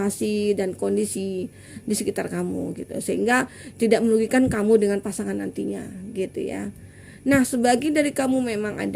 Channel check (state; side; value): identical; both; correlation 1.00